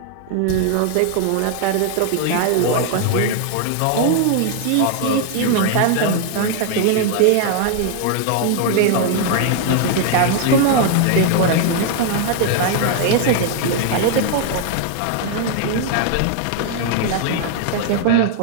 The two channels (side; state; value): both; different; correlation 0.00